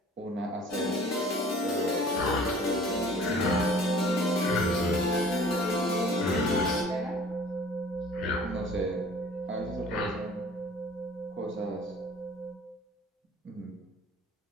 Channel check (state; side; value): normal; both; correlation 0.49